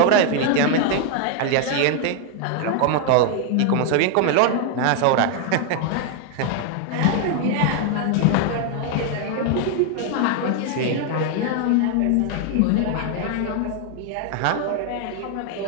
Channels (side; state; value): both; different; correlation 0.00